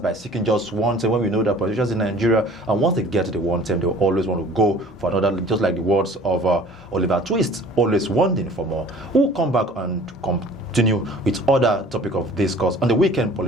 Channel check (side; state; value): both; normal; correlation 0.48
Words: by seeking just one term, when we know that politicians in Nigeria, and once they get to the one term, they will always want to go for another, just like the words of Oliver Twist, always wanting for more. We'll come back and continue with other topic of discourse on the weekend